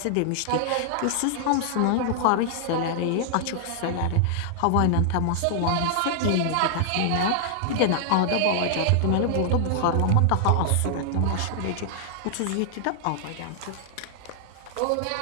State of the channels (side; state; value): both; different; correlation -0.01